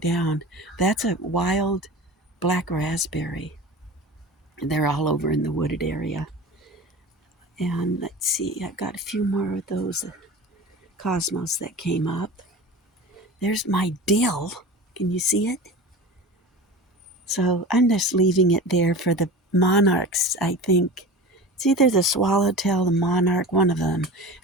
down. That's a wild black raspberry. They're all over in the wooded area. And let's see, I've got a few more of those cosmos that came up. There's my dill. Can you see it? So I'm just leaving it there for the monarchs, I think. It's either the swallowtail, the monarch, one of them.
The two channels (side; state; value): both; normal; correlation 0.33